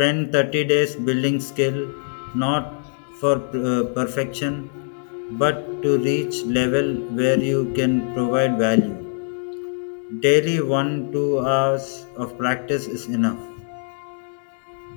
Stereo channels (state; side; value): silent; right; digital silence